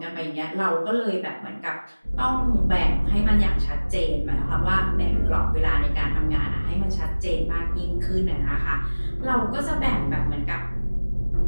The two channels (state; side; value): inverted; both; correlation -1.00